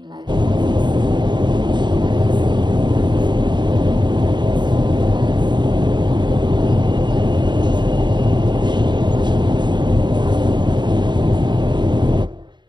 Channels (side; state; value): left; late; 0.22 ms